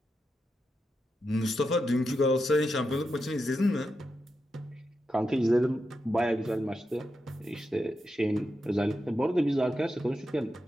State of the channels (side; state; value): both; normal; correlation 0.87